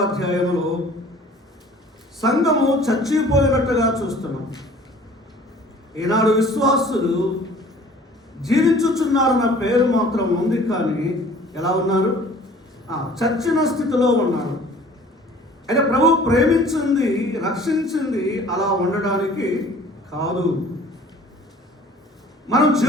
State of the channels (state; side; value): normal; both; correlation 0.50